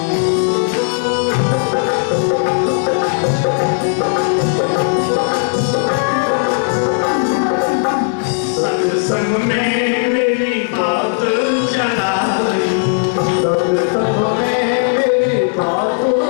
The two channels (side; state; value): right; silent; 69 dB below the other